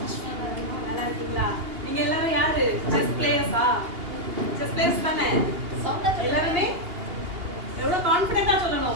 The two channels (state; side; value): late; left; 2.8 ms